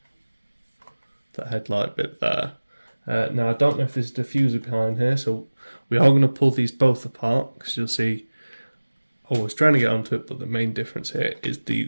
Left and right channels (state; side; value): inverted; both; correlation -1.00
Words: headlight bit there. Now I don't know if there's a diffuser behind here, so we are going to pull these both apart, because you'll see I was trying to get onto it, but the main difference here is